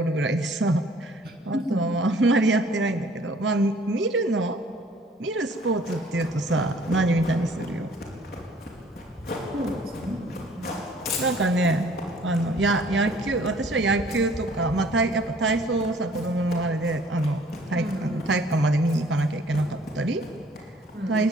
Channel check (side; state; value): both; normal; correlation 0.56